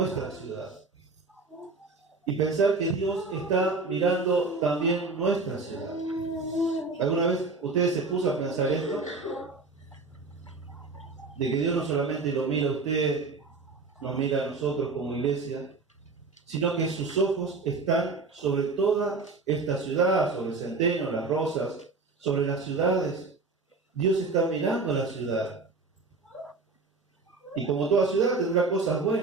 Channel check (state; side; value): quieter; left; 3.9 dB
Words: ciudad, y pensar que Dios está mirando también nuestra ciudad. ¿Alguna vez ustedes se puso a pensar esto? De que Dios no solamente lo mira a usted, nos mira a nosotros como iglesia, sino que sus ojos están sobre toda esta ciudad, sobre Centeno, Las Rosas, sobre las ciudades. Dios está mirando a la ciudad. Y como toda ciudad tendrá cosas